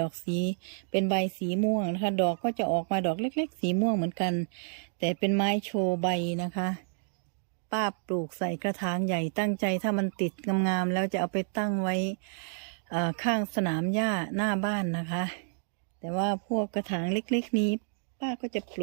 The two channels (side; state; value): left; silent; digital silence